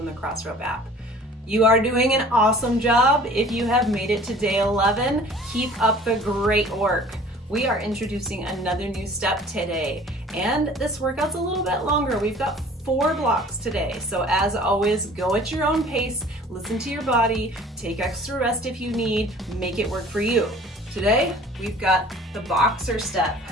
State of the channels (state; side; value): normal; both; correlation 0.49